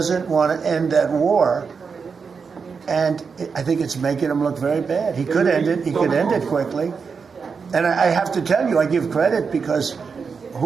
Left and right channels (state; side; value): quieter; left; 5.5 dB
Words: want to end that war. And I think it's making him look very bad. He could end it. He could end it quickly. And I have to tell you, I give credit because who